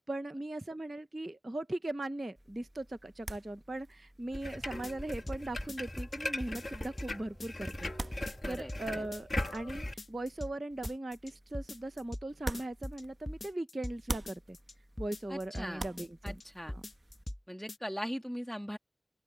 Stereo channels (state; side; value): normal; both; correlation 0.96